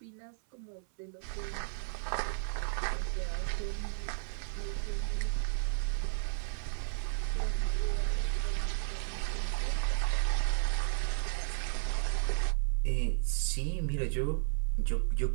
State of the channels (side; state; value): left; silent; 55 dB below the other